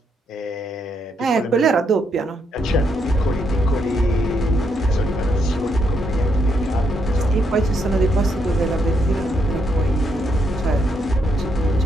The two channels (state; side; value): normal; both; correlation 0.77